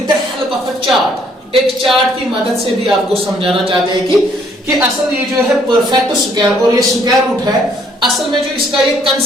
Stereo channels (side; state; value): both; normal; correlation 0.65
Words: the help of a chart, एक चार्ट की मदद से भी आपको समझाना चाहते हैं कि असल ये जो है परफेक्ट स्क्वायर और ये स्क्वायर रूट है, असल में जो इसका ये